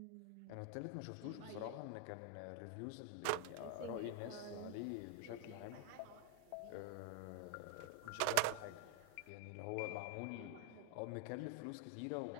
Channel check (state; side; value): different; both; correlation 0.01